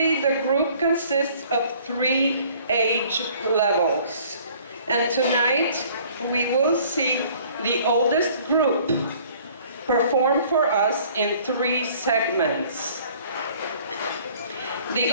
the group consists of 3 age levels, and tonight we will see the oldest group perform for us in 3 segments. The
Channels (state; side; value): inverted; both; correlation -0.55